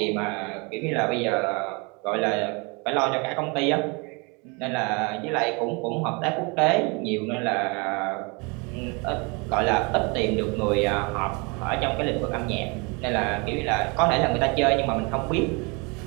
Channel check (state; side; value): quieter; left; 30.2 dB